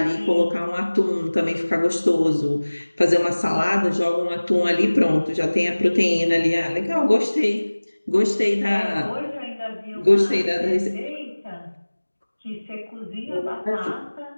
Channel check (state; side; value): inverted; both; correlation -1.00